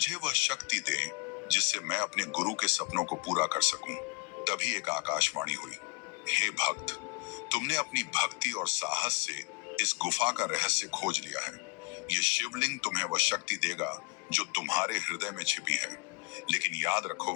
वह शक्ति दे जिससे मैं अपने गुरु के सपनों को पूरा कर सकूं। तभी एक आकाशवाणी हुई, हे भक्त, तुमने अपनी भक्ति और साहस से इस गुफा का रहस्य खोज लिया है। यह शिवलिंग तुम्हें वह शक्ति देगा जो तुम्हारे हृदय में छिपी है। लेकिन याद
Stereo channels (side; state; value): right; quieter; 29.9 dB